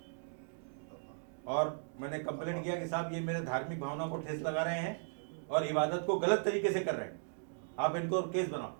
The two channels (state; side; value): silent; left; digital silence